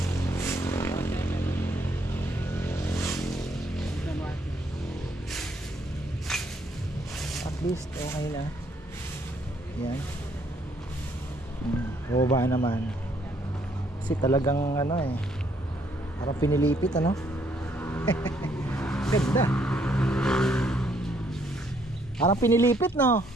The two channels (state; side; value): normal; both; correlation 0.69